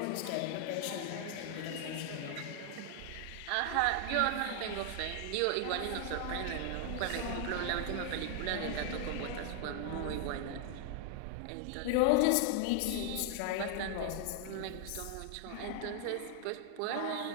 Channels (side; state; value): both; different; correlation 0.00